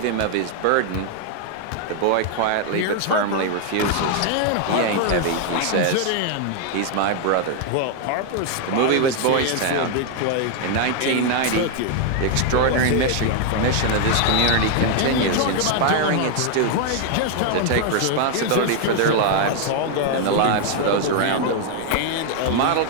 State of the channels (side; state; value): both; different; correlation 0.00